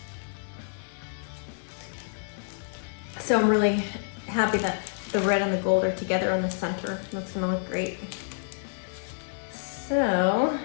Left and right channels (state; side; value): silent; right; 59 dB below the other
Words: So I'm really happy that the red and the gold are together on the center. That's gonna look great. So